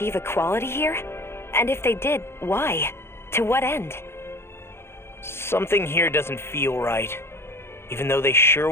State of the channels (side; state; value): right; late; 0.12 ms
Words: equality here? And if they did, why? To what end? Something here doesn't feel right, even though they sure